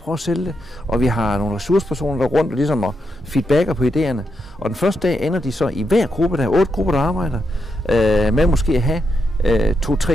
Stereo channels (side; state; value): both; normal; correlation 0.83